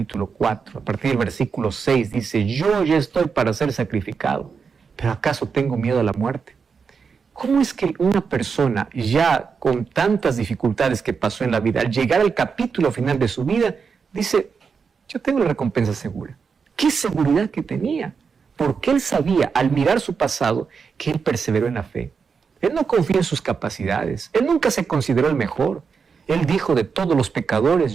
4, a partir del versículo 6, dice: yo ya estoy para ser sacrificado, pero ¿acaso tengo miedo a la muerte? ¿Cómo es que una persona ya con tantas dificultades que pasó en la vida, al llegar al capítulo final de su vida, dice: yo tengo la recompensa segura? ¿Qué seguridad que tenía? Porque él sabía, al mirar su pasado, que él perseveró en la fe. Él no confía en sus capacidades. Él nunca se consideró el mejor. Él dijo: de todos los pecadores,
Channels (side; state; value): left; quieter; 5.7 dB